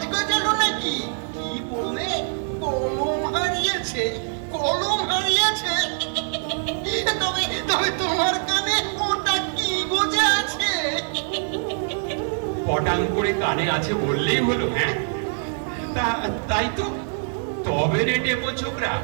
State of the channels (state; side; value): silent; left; 60 dB below the other